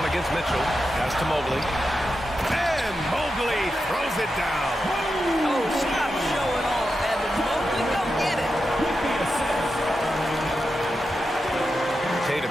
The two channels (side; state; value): both; normal; correlation 0.89